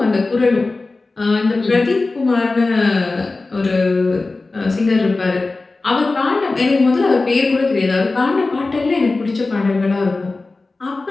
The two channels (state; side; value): quieter; right; 3.5 dB